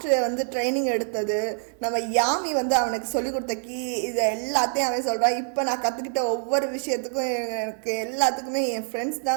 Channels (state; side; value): silent; left; digital silence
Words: வந்து ட்ரைனிங் எடுத்தது, நம்ம யாமி வந்து அவனுக்கு சொல்லிக் கொடுத்த கீ, இதை எல்லாத்தையும் அவன் சொல்கிறான். இப்போ நான் கற்றுக்கிட்ட ஒவ்வொரு விஷயத்துக்கும் எனக்கு எல்லாத்துக்குமே என் ஃப்ரெண்ட்ஸ்